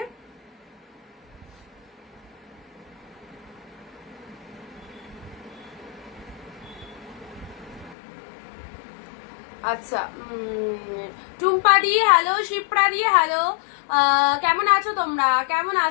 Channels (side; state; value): right; drops out; at 8.0 s